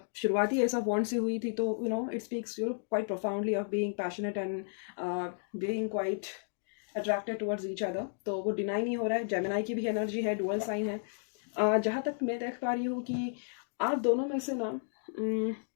शुरुआती ऐसा बॉन्ड से हुई थी, तो it speaks quite profoundly of being passionate and being quite attracted towards each other, तो वो डिनाई नहीं हो रहा है। जेमिनाई की भी एनर्जी है, डुअल साइन है। जहाँ तक मैं देख पा रही हूँ कि आप दोनों में से ना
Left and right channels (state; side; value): silent; right; digital silence